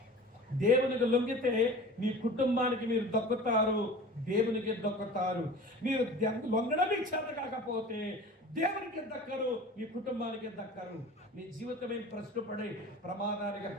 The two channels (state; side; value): normal; both; correlation 0.39